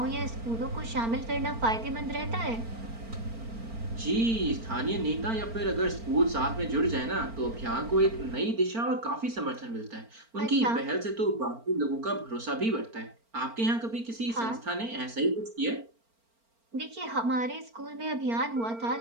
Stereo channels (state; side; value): late; left; 4.4 ms